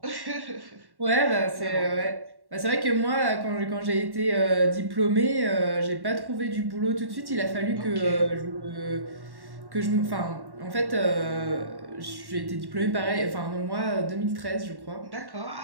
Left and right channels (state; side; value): late; left; 1.1 ms